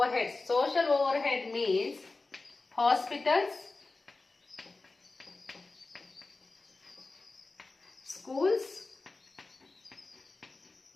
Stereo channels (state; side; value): quieter; right; 3.5 dB